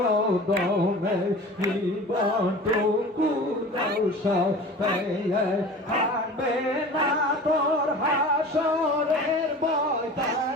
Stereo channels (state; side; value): normal; both; correlation 0.39